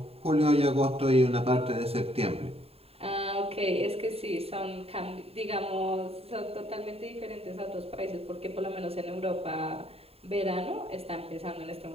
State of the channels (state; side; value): late; left; 0.29 ms